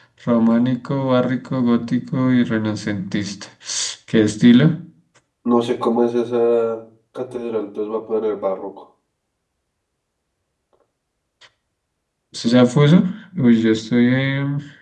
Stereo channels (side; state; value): both; identical; correlation 1.00